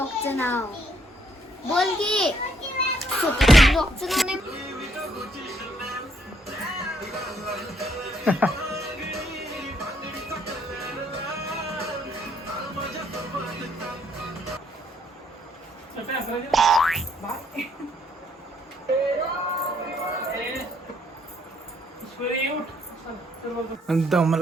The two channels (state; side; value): normal; both; correlation 0.69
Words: नाव. बोल की स्वतःच्या ब्लॉगचं नाव नाही.